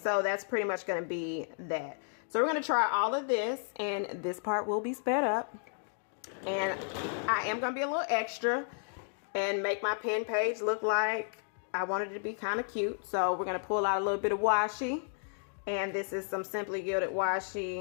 that's pretty much going to be that. So we're going to try all of this, and this part will be sped up. And I am going to be a little extra and make my pen page look like I wanted it to be kind of cute. So we're going to pull out a little bit of washi. And this is some Simply Gilded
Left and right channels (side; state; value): right; silent; digital silence